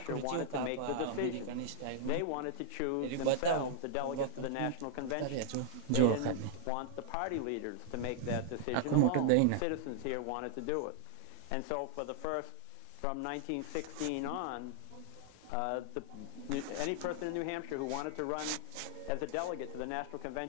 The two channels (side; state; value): both; different; correlation -0.01